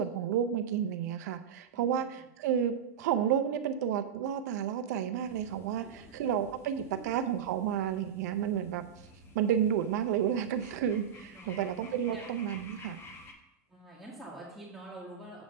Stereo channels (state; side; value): quieter; left; 8.6 dB